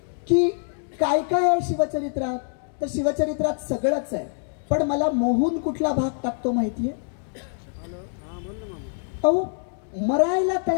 की काय काय आहे शिवचरित्रात, तर शिवचरित्रात सगळंच आहे. पण मला मोहून कुठला भाग टाकतो माहितीये? अहो, मरायला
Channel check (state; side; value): silent; right; digital silence